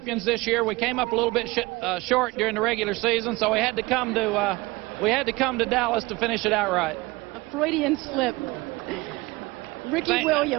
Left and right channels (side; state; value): left; quieter; 22.3 dB